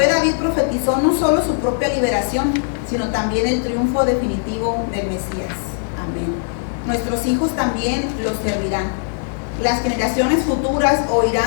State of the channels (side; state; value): right; silent; digital silence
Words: David profetizó no solo su propia liberación, sino también el triunfo definitivo del Mesías. Amén. Nuestros hijos también los servirán. Las generaciones futuras